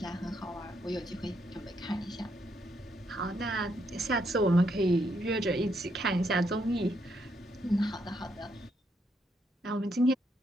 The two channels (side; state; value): both; normal; correlation 0.76